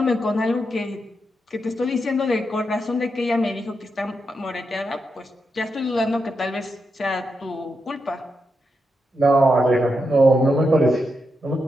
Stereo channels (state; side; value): normal; both; correlation 0.85